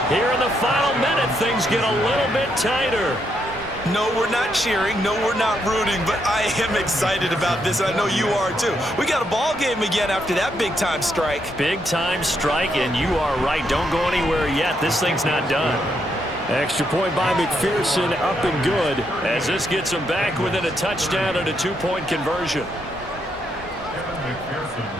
here in the final minute, things get a little bit tighter. No, we're not cheering. No, we're not rooting, but I am excited about this, and I know you are too. We got a ball game again after that big-time strike. Big-time strike, and you are right. Don't go anywhere yet. This thing's not done. Extra point by McPherson, up and good. As this gets them back within a touchdown and a 2-point conversion.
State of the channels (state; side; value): normal; both; correlation 0.78